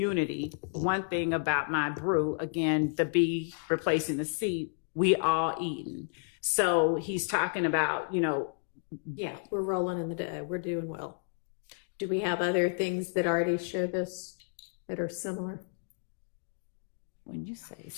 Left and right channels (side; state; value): right; silent; digital silence